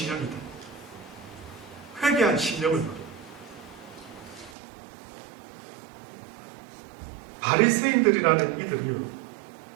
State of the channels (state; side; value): drops out; left; at 4.5 s